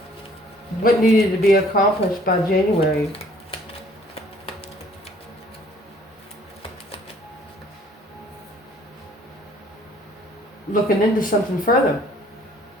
What needed to be accomplished by January? Looking into something further.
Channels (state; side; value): normal; both; correlation 0.58